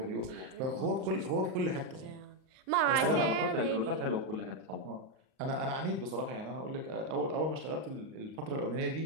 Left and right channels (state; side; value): late; left; 38 ms